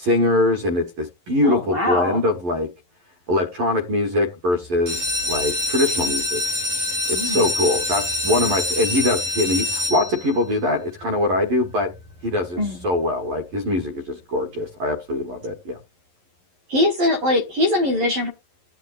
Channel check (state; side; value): late; left; 11 ms